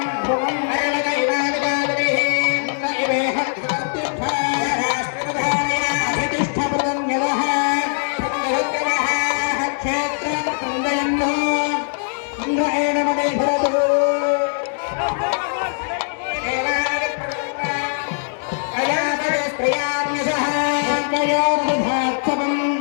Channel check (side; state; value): right; silent; 65 dB below the other